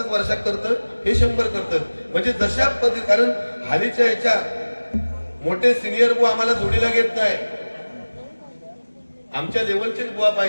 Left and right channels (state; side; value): inverted; both; correlation -1.00